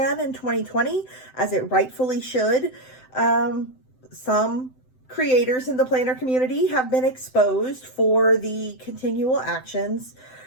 in 2020, as it rightfully should, some creators in the planner community have been exposed for the continual actions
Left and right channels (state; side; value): late; right; 7.8 ms